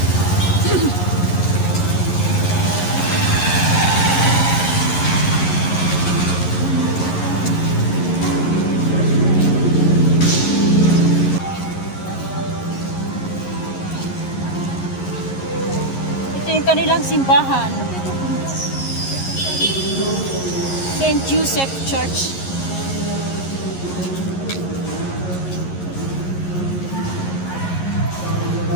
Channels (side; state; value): right; late; 11 ms